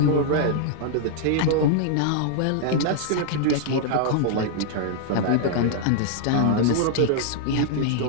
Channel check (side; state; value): both; different; correlation -0.01